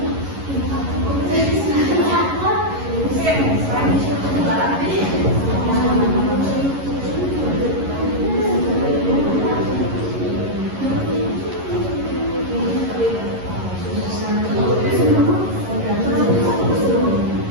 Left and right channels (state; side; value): late; left; 11 ms